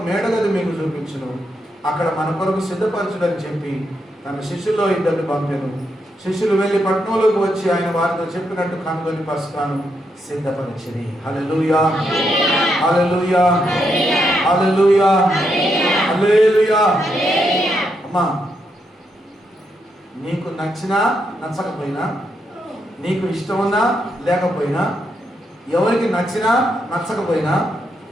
మేడగది మీకు చూపించును, అక్కడ మన కొరకు సిద్ధపరచుడని చెప్పి తన శిష్యుల్లో ఇద్దరిని పంపెను. శిష్యులు వెళ్ళి పట్టణంలోకి వచ్చి ఆయన వారితో చెప్పినట్టు కనుగొని పస్కాను సిద్ధపరిచిరి. హల్లెలూయా, హల్లెలూయా, హల్లెలూయా, హల్లెలూయా. అమ్మా, నీకు నచ్చినా నచ్చకపోయినా, నీకు ఇష్టమున్నా లేకపోయినా, ఎవరికి నచ్చినా నచ్చకపోయినా,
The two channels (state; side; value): normal; both; correlation 0.80